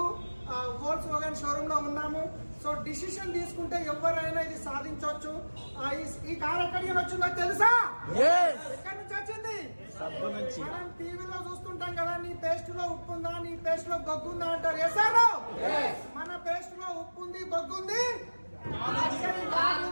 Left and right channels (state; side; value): inverted; both; correlation -1.00